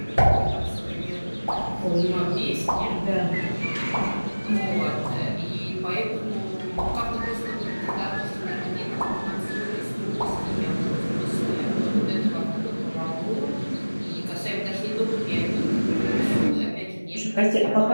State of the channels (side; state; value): both; inverted; correlation -1.00